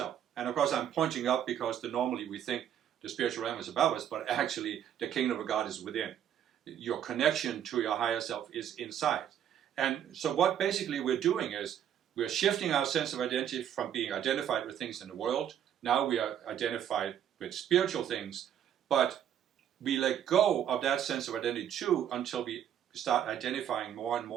And of course I'm pointing up because normally we think the spiritual realm is above us, but actually the kingdom of God is within. Your connection to your higher self is inside. And so what basically we're doing is we're shifting our sense of identity from being identified with things in the world. Now we are identified with spiritual things, but we let go of that sense of identity too until we start identifying more and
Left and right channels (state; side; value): quieter; left; 9.9 dB